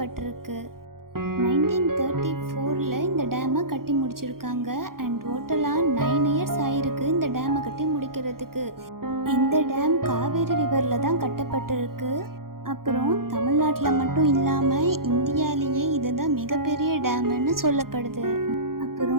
1934 இந்த டேமை கட்டி முடிச்சிருக்காங்க. அண்ட் டோட்டலாக 9 இயர்ஸ் ஆயிருக்கு இந்த டேமை கட்டி முடிக்கிறதுக்கு. இந்த டேம் காவேரி ரிவரில் தான் கட்டப்பட்டிருக்கு. அப்புறம் தமிழ்நாட்டில் மட்டும் இல்லாமல் இந்தியாவிலேயே இதுதான் மிகப்பெரிய டேம்னு சொல்லப்படுது.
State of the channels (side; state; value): left; late; 0.92 ms